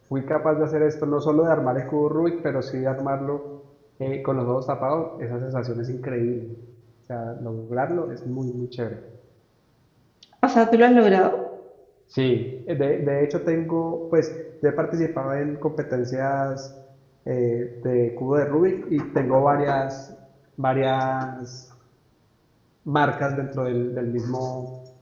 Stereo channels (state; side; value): identical; both; correlation 1.00